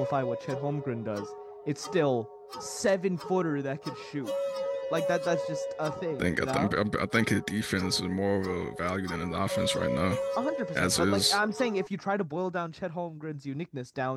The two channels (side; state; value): both; identical; correlation 1.00